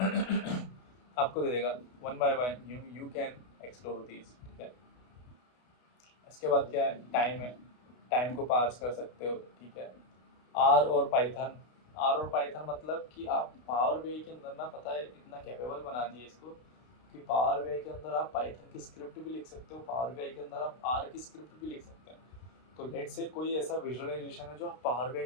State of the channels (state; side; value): late; right; 32 ms